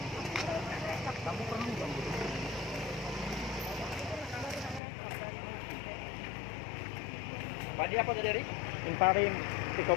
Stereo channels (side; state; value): right; drops out; at 4.8 s